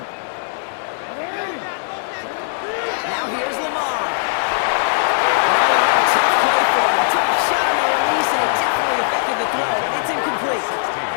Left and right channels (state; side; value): silent; right; digital silence